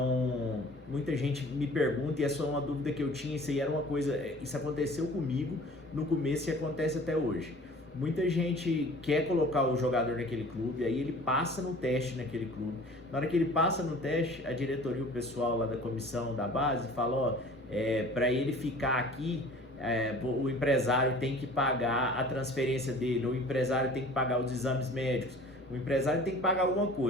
muita gente me pergunta, e essa é uma dúvida que eu tinha, isso aconteceu comigo no começo e acontece até hoje. Muita gente quer colocar o jogador naquele clube, aí ele passa no teste naquele clube. Na hora que ele passa no teste, a diretoria, o pessoal lá da comissão da base fala, para ele ficar aqui, o empresário tem que pagar a transferência dele, o empresário tem que pagar os exames médicos, o empresário tem que pagar alguma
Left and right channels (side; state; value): both; normal; correlation 0.46